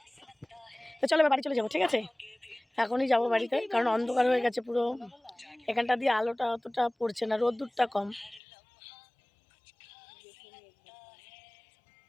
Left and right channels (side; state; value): right; drops out; at 8.4 s